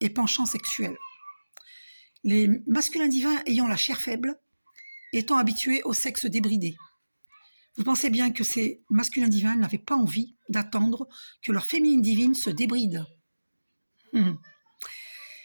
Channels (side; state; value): both; inverted; correlation -1.00